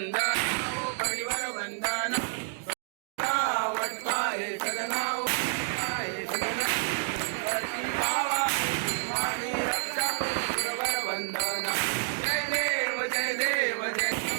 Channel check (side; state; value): left; silent; digital silence